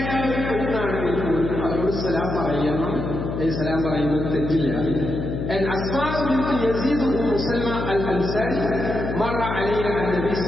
ഒരു പെണ്ണാണെങ്കിൽ പോലും അവരോട് സലാം പറയണം. സലാം പറയുന്നത് തെറ്റില്ല. أسماء بنت يزيد بن سلمى الأنصاري مر علينا النبي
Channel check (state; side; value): noise; left; hum, 4 dB below the sound